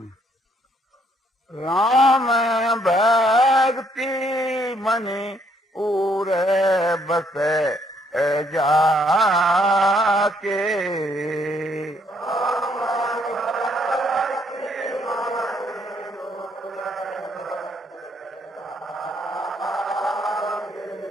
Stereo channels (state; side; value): normal; both; correlation 0.69